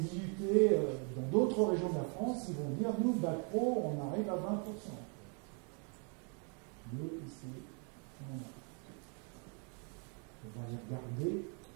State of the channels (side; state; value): left; quieter; 38.9 dB